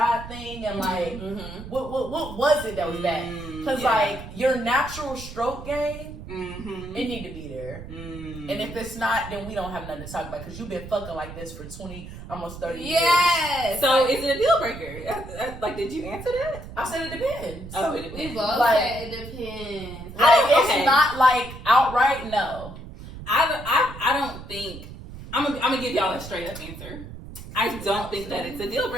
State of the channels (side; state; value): right; noise; rumble, 12 dB below the sound